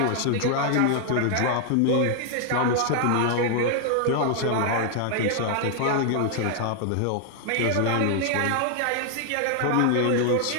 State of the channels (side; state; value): both; different; correlation 0.00